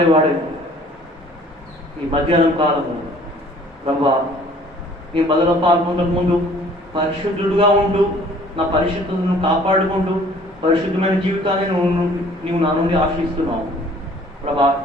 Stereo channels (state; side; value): normal; both; correlation 0.54